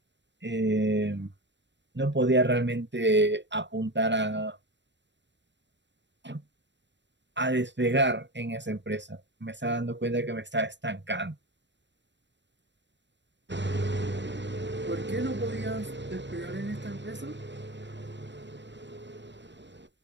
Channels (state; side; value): late; left; 0.52 ms